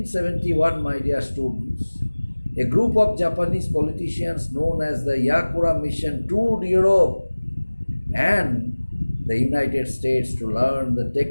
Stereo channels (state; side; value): inverted; both; correlation -1.00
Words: my dear students, a group of Japanese politicians known as the Yakura Mission toured Europe and the United States to learn the